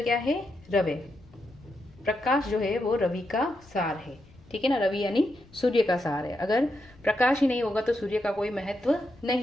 क्या है? रवे। प्रकाश जो है वो रवि का सार है। ठीक है ना, रवि यानी सूर्य का सार है। अगर प्रकाश ही नहीं होगा तो सूर्य का कोई महत्व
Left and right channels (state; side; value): noise; left; rumble, 25 dB below the sound